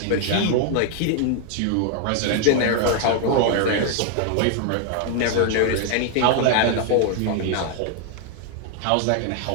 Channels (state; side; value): different; both; correlation 0.00